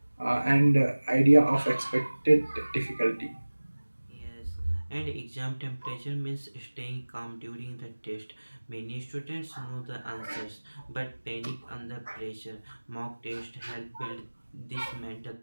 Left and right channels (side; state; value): both; inverted; correlation -1.00